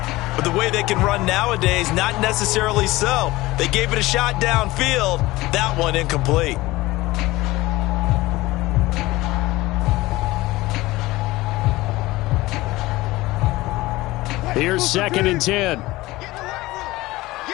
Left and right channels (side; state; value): right; quieter; 19.1 dB